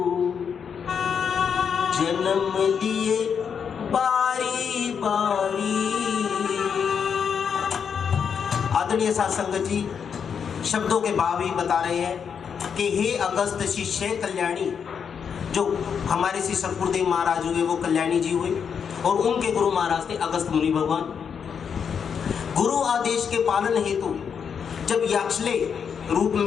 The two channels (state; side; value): quieter; right; 7.0 dB